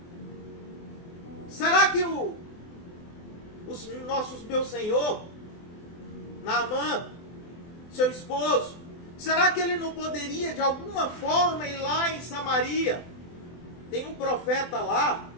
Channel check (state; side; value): late; right; 24 ms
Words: será que meu senhor, Naamã, seu esposo, será que ele não poderia de alguma forma ir lá em Samaria? Tem um profeta lá,